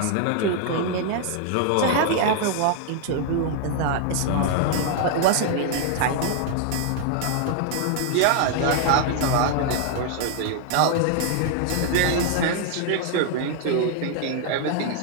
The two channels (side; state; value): both; different; correlation 0.00